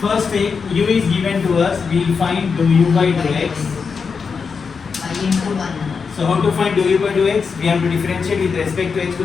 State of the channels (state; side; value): quieter; right; 5.5 dB